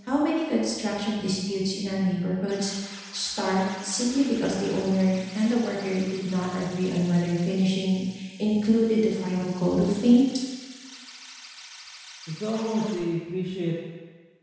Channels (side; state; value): both; identical; correlation 1.00